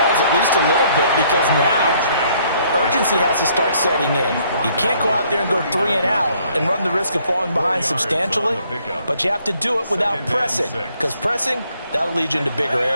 at least a little bit, because now urgency has to start setting in. You can't go out there and go 3 and out and run the risk of falling behind substantially, but you have to do it without pressing, because pressing, that'll lead you into bigger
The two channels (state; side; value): inverted; both; correlation -0.65